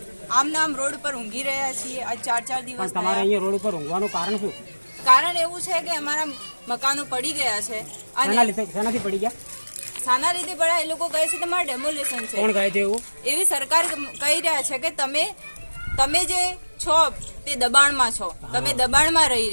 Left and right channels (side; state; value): both; inverted; correlation -1.00